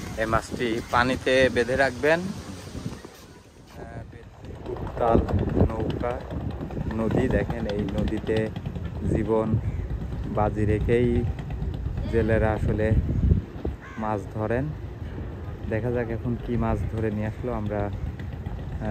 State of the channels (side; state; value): both; identical; correlation 1.00